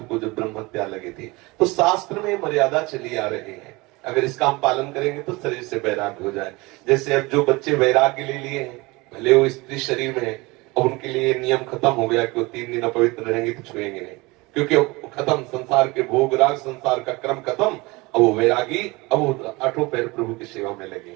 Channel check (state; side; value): quieter; left; 23.6 dB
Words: को जब ब्रह्म हत्या लगी थी तो शास्त्र में मर्यादा चली आ रही है, अगर इसका हम पालन करेंगे तो शरीर से वैराग्य हो जाए। जैसे अब जो बच्चे वैराग्य ले लिए हैं, भले वो स्त्री शरीर में है, अब उनके लिए नियम खत्म हो गया कि वो 3 दिन अपवित्र रहेंगे तो छुएंगे नहीं, क्योंकि खत्म संसार के भोग राग, संसार का क्रम खत्म। अब वो वैरागी, अब वो आठों पैर प्रभु की सेवा में लगे